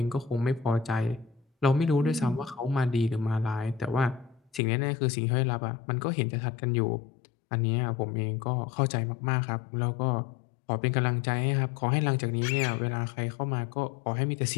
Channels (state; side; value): drops out; right; at 4.6 s